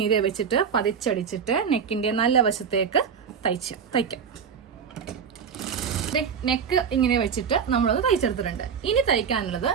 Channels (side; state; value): left; quieter; 6.9 dB